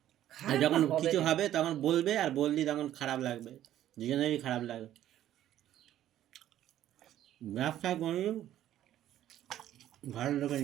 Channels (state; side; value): quieter; left; 12.3 dB